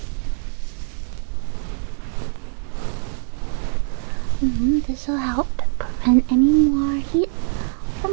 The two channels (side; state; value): left; silent; digital silence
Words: This will help. and any more heat